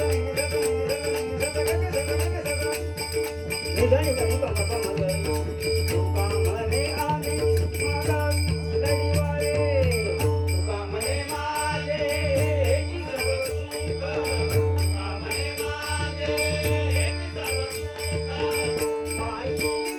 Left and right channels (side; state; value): both; identical; correlation 1.00